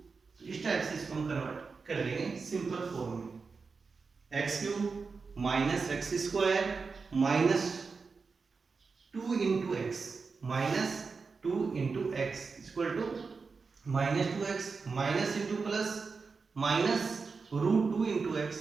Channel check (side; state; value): left; quieter; 4.7 dB